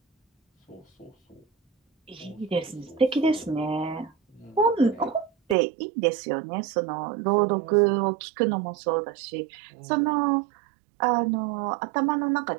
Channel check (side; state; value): left; drops out; at 5.6 s